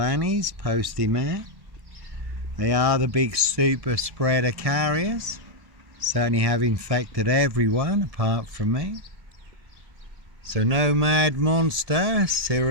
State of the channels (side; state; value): left; late; 1.7 ms